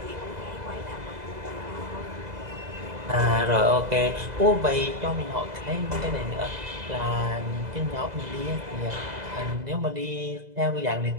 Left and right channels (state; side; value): late; left; 2.0 ms